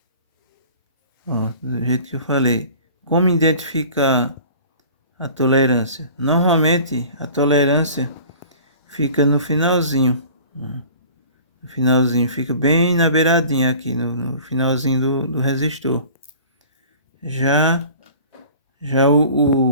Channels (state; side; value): inverted; both; correlation -0.45